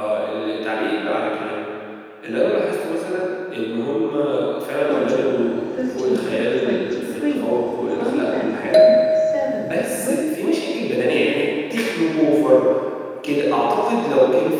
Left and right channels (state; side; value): identical; both; correlation 1.00